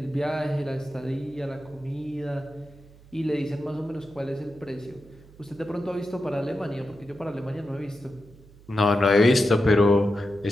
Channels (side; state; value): right; noise; hum, 23 dB below the sound